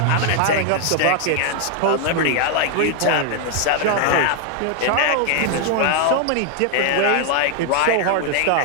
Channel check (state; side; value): different; both; correlation 0.00